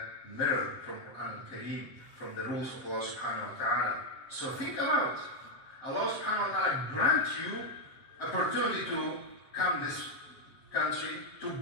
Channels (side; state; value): right; late; 7.2 ms